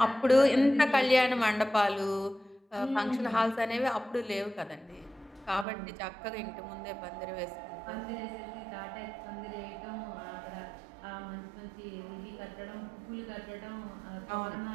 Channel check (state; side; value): drops out; left; at 5.7 s